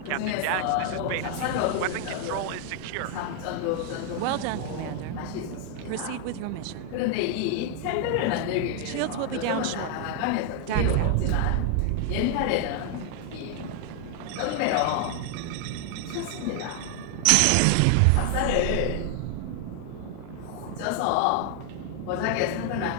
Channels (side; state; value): both; different; correlation 0.00